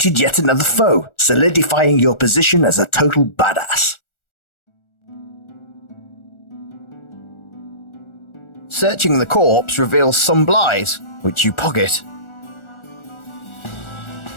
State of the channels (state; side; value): late; right; 1.4 ms